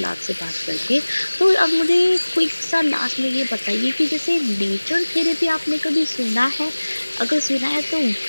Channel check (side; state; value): both; inverted; correlation -1.00